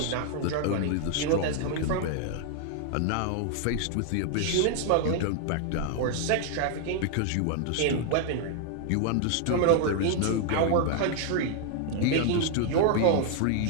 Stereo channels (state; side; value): different; both; correlation 0.00